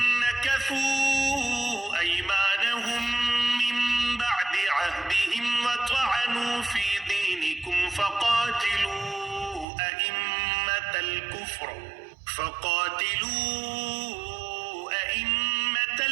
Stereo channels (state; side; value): drops out; left; at 9.7 s